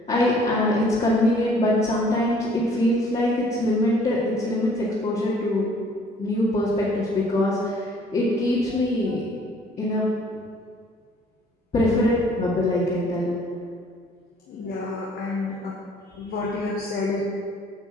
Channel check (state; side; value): normal; both; correlation 0.58